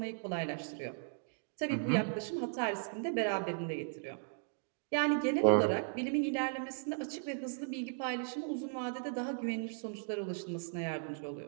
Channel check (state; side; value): silent; left; digital silence